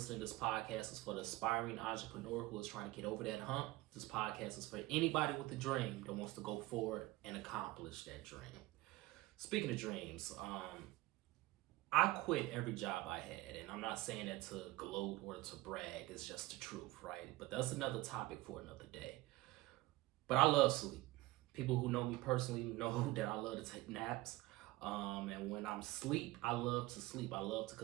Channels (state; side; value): quieter; left; 18.8 dB